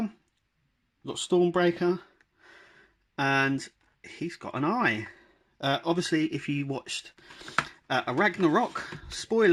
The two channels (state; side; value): identical; both; correlation 1.00